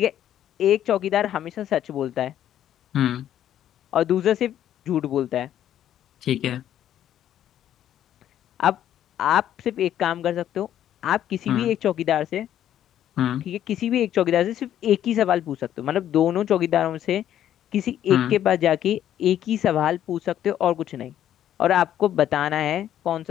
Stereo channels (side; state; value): right; quieter; 11.1 dB